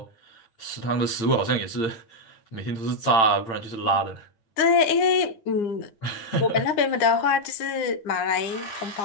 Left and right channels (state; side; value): late; right; 9.8 ms